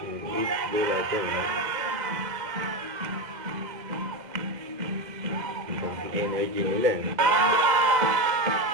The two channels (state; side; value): late; left; 2.1 ms